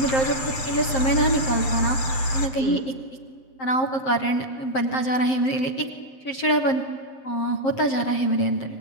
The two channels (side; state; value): right; late; 7.6 ms